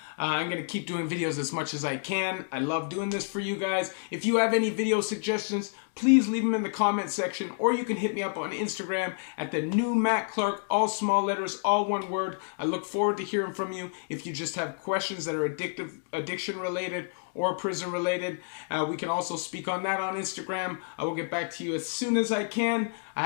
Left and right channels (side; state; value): right; silent; digital silence